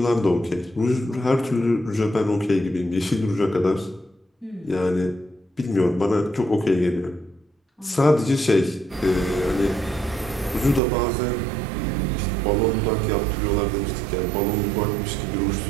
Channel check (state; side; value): drops out; left; at 10.8 s